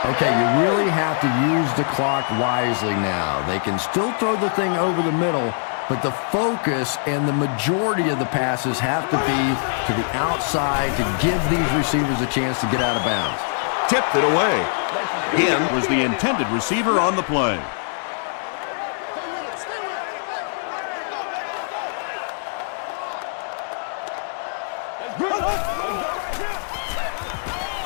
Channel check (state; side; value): silent; right; digital silence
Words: Okay, you really have to use the clock wisely now. They can still throw the thing over the middle, but the focus and the majority of the passes have to be to the outside to give these receivers a chance to get out of bounds. Tipped it away. Again was the intended receiver on the play.